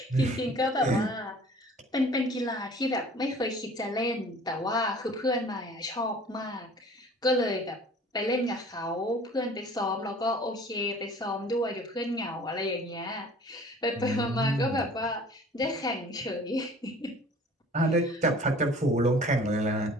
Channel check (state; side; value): normal; both; correlation 0.48